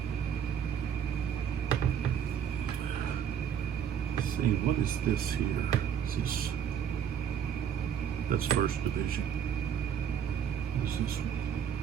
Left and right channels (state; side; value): quieter; left; 8.5 dB